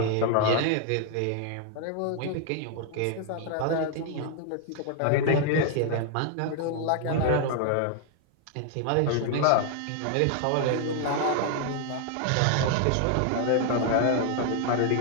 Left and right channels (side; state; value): both; different; correlation 0.00